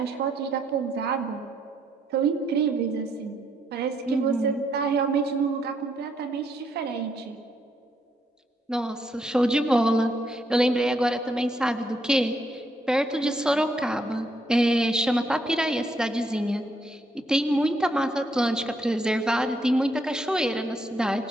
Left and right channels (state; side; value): normal; both; correlation 0.74